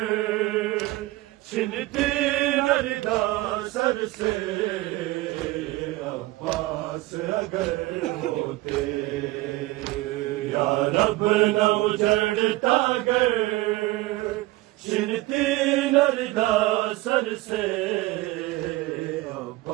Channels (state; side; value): quieter; left; 19.4 dB